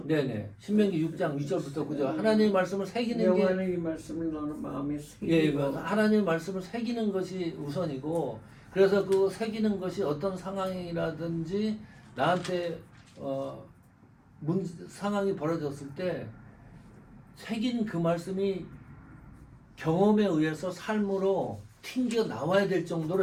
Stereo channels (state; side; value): identical; both; correlation 1.00